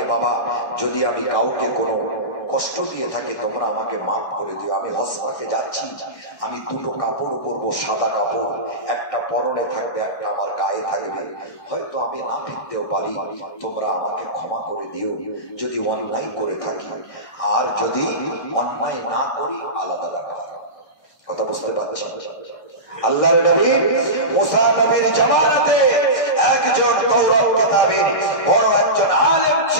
বাবা যদি আমি কাউকে কোনো কষ্ট দিয়ে থাকি, তোমরা আমাকে মাফ করে দিও, আমি হসপাকে যাচ্ছি, আমি 2টো কাপড় পরবো, সাদা কাপড়, একটা পরনে থাকবে, একটা আমার গায়ে থাকবে, হয়তো আমি না ফিরতেও পারি, তোমরা আমাকে ক্ষমা করে দিও যদি অন্যায় করে থাকি, আর যদি অন্যায় না করি আলাদা ব্যাপার। কথা বুঝতে পারছি? আল্লাহর নবী মুসা নবীর জামানাতে একজন তওরাত কিতাবের বড় একজন আলেম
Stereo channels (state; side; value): late; right; 1.6 ms